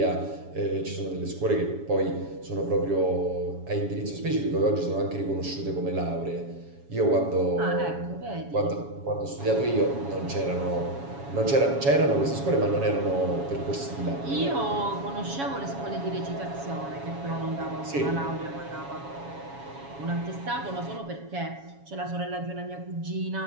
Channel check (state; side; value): late; left; 7.2 ms